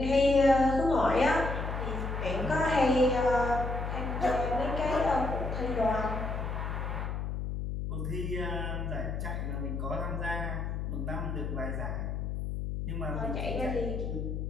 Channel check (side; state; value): left; noise; hum, 3 dB below the sound